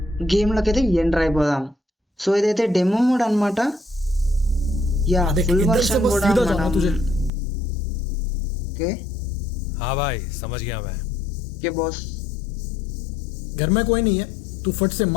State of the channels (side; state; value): right; drops out; at 7.3 s